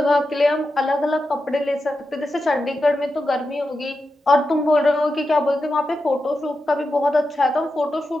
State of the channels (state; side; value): normal; both; correlation 0.89